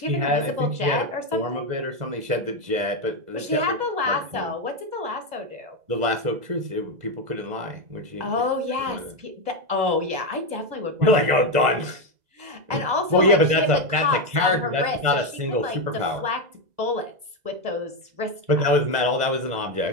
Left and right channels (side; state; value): left; late; 2.0 ms